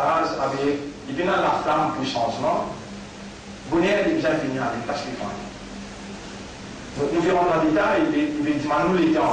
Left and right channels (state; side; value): identical; both; correlation 1.00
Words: avec, il vient la flamme pour changement. Vous n'avez pas besoin de finir avec parce qu'il faut. Nous verrons dans le détail, il va dire nous les